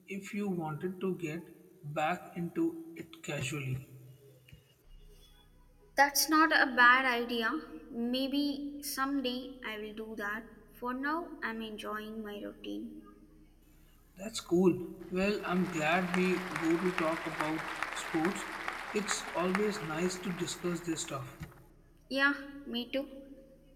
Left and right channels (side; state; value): both; identical; correlation 1.00